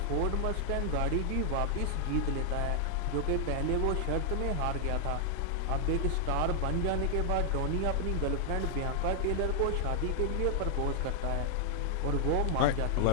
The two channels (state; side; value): different; both; correlation 0.00